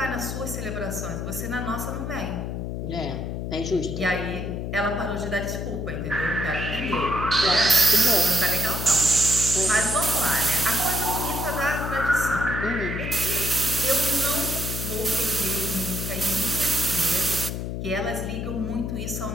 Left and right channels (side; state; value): left; noise; hum, 4 dB below the sound